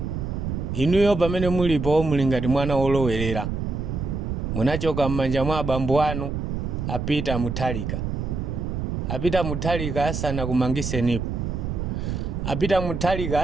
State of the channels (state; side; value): noise; right; rumble, 3 dB below the sound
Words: Inuyo pamene mulipo muli ngati mwana wolowerera, munachoka m'manja mwa abambo anu apita muthalika asana kumangisenipo, apita muthalika